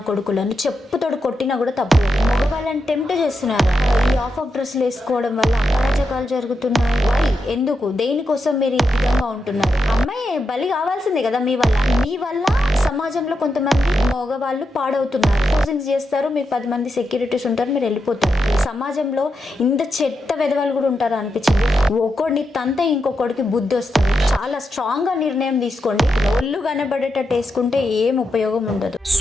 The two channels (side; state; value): both; normal; correlation 0.86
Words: కొడుకులను చెప్పుతోడు కొట్టినా కూడా తప్పలేదు. మగవాళ్ళని టెంప్ట్ చేస్తున్నారు. ఈ ఆఫ్ డ్రెస్సులు వేసుకోవడం వల్ల అరాచకాలు జరుగుతున్నాయి. వై? ఎందుకు? దేనికోసం మీరు ఈ విధంగా ఉంటున్నారు? అమ్మాయి బలి కావాల్సిందే కదా మీ వల్ల సమాజంలో కొంతమంది మగవాళ్ళు పాడవుతున్నారు. పోజింగ్స్ చేస్తారు, మీకు 10 మంది సెక్యూరిటీస్ ఉంటారు, మీరు వెళ్ళిపోతారు. సమాజంలో ఇంత చెత్త వెధవాళ్ళు కూడా ఉంటారు అనిపించింది. ఒకడిని తంత ఇంకొకడికి బుద్ధి వస్తుంది. చాలా స్ట్రాంగ్ గా నిర్ణయం తీసుకోండి. ఒళ్ళు కనబడేటట్టు వేసుకుంటే ఏం ఉపయోగం ఉండదు.